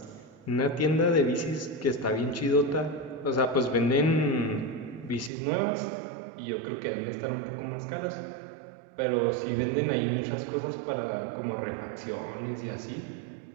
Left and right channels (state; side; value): drops out; left; at 5.3 s